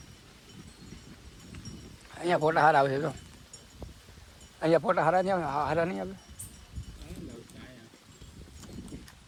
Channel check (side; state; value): both; identical; correlation 1.00